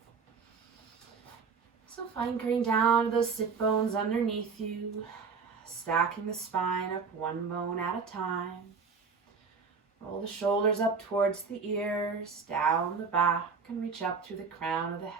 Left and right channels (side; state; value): left; quieter; 5.3 dB